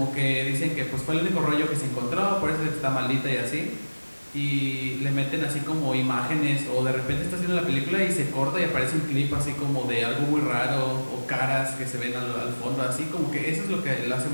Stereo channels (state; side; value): inverted; both; correlation -1.00